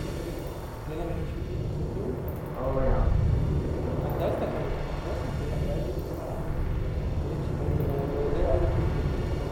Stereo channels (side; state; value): both; identical; correlation 1.00